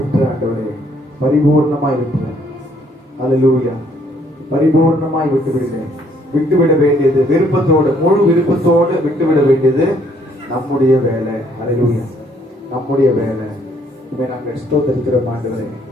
ஆண்டவரே பரிபூர்ணமாய் விட்டுறேன். ஹல்லேலூயா. பரிபூர்ணமாய் விட்டுவிடுகிறேன். விட்டுவிட வேண்டியது விருப்பத்தோடு, முழு விருப்பத்தோடு விட்டுவிட வேண்டியது நம்முடைய வேலை. ஹல்லேலூயா. நம்முடைய வேலை. நாங்கள் ஸ்தோத்திரிக்கிறோம் ஆண்டவரே.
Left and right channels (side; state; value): both; normal; correlation 0.66